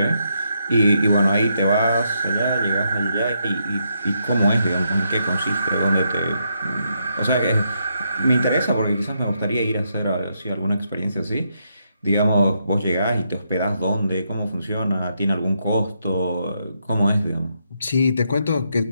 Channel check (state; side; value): inverted; both; correlation -0.79